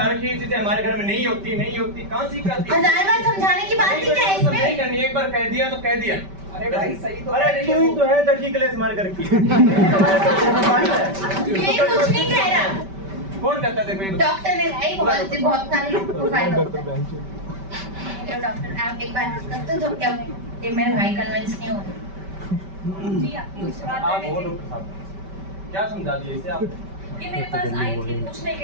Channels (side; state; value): left; late; 5.1 ms